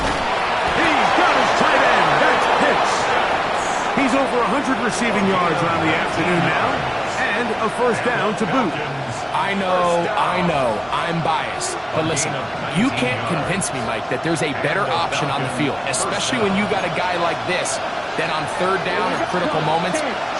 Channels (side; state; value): both; identical; correlation 1.00